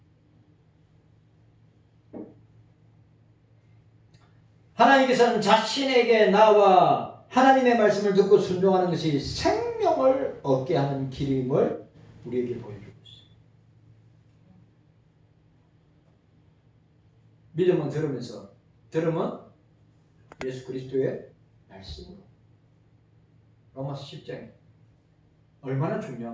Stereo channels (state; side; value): identical; both; correlation 1.00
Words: 하나님께서는 자신에게 나와 하나님의 말씀을 듣고 순종하는 것이 생명을 얻게 하는 길임을 우리에게 보여주고 있어요. 믿음은 들으면서, 들음은 예수 그리스도의 말씀으로. 로마서 10장에 얼마나